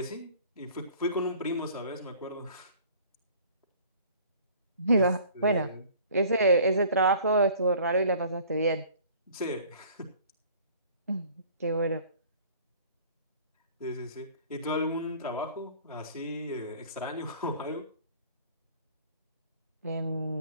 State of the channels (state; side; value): inverted; both; correlation -0.50